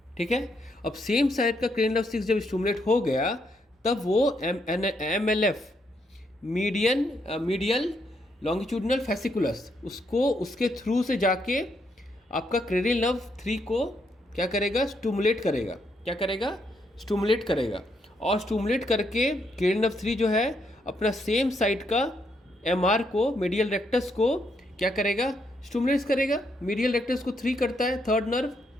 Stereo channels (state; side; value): normal; both; correlation 0.76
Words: ठीक है, अब सेम साइड का क्रेनियल नर्व 6 जब स्टिमुलेट हो गया, तब वो एमएलएफ, मीडियल लॉन्गिट्यूडिनल फैसिकुलस, उसको उसके थ्रू से जाके आपका क्रेनियल नर्व 3 को क्या करेगा? स्टिमुलेट करेगा। क्या करेगा? स्टिमुलेट करेगा। और स्टिमुलेट करके क्रेनियल नर्व 3 जो है अपना सेम साइड का एमआर को, मीडियल रेक्टस को क्या करेगा? स्टिमुलेट करेगा। मीडियल रेक्टस को 3 करता है, थर्ड नर्व।